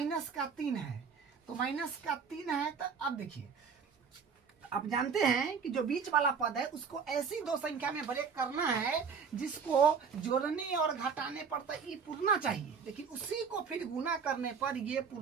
का 3 है, तो माइनस का 3 है। तो अब देखिए आप जानते हैं कि जो बीच वाला पद है उसको ऐसी दो संख्या में ब्रेक करना है जिसको जोड़ने और घटाने पर तो ये पूर्णा चाहिए, लेकिन उसी को फिर गुना करने पर ये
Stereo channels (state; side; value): quieter; left; 6.0 dB